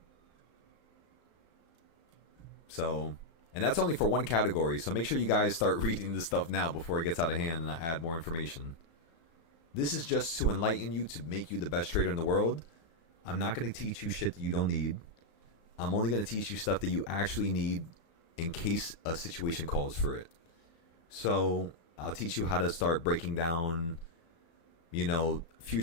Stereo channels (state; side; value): late; right; 35 ms